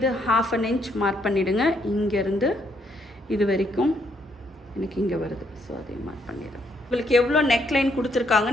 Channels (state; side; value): normal; both; correlation 0.72